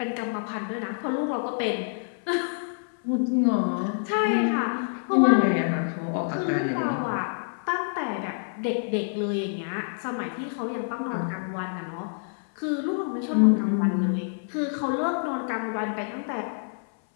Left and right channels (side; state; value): right; silent; 60 dB below the other